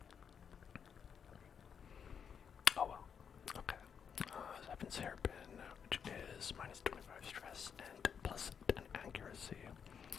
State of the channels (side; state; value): right; quieter; 7.2 dB